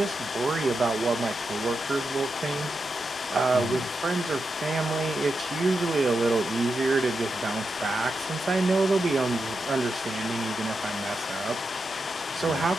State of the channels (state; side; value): normal; both; correlation 0.87